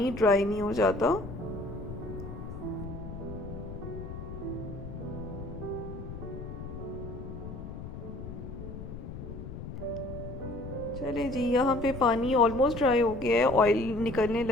ड्राई नहीं हो जाता। चलिए जी, यहाँ पे पानी ऑलमोस्ट ड्राई हो गया है, ऑयल निकलने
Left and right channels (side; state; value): left; noise; rumble, 9 dB below the sound